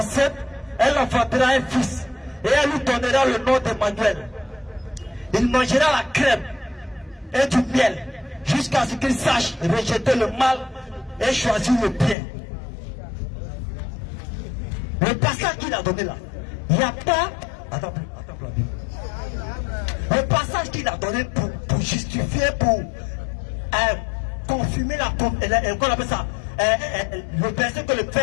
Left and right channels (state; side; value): drops out; right; at 12.2 s